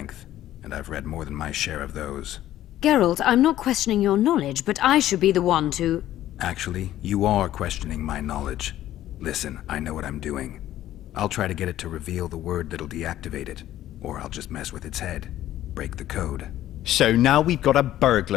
and I've read more than my share of those. Geralt, I'm not questioning your knowledge, but I should be the one to... Actually, you are questioning my knowledge. Listen, I know what I'm doing. I'll try to get it to reveal the word that'll deactivate it, or I'll just mess with its head. Break the code. So now we've got a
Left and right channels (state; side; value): quieter; right; 13.3 dB